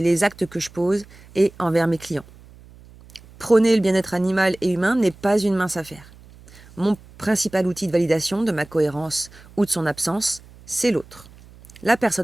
les actes que je pose et envers mes clients. Prôner le bien-être animal et humain n'est pas une mince affaire. Mon principal outil de validation de ma cohérence ou de son absence, c'est l'autre. La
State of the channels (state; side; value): noise; right; hum, 23 dB below the sound